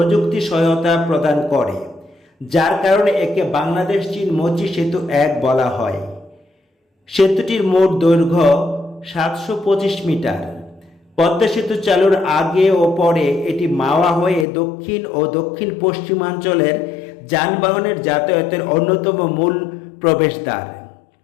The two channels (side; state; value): right; drops out; at 14.5 s